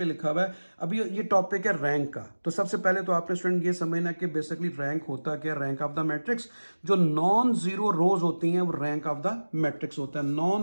लिखा हुआ है, अभी ये टॉपिक है रैंक का। तो सबसे पहले तो आपने स्टूडेंट ये समझना कि बेसिकली रैंक होता क्या, रैंक ऑफ द मैट्रिक्स। जो नॉन जीरो रोज होती हैं वो रैंक ऑफ द मैट्रिक्स होता है।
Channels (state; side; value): inverted; both; correlation -1.00